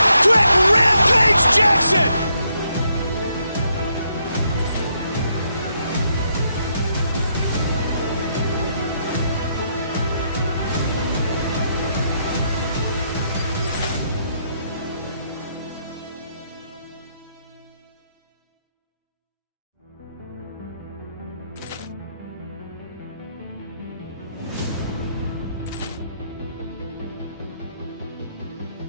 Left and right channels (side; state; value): both; inverted; correlation -0.76